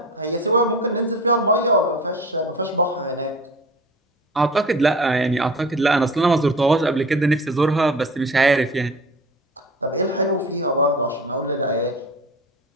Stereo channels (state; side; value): normal; both; correlation 0.37